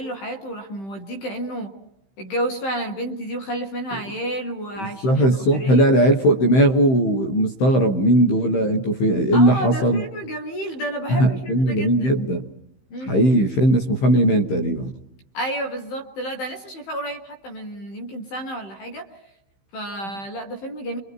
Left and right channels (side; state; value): right; late; 15 ms